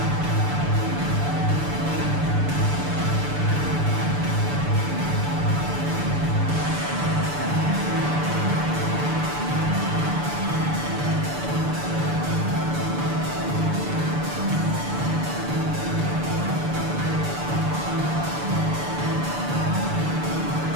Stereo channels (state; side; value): late; left; 6.9 ms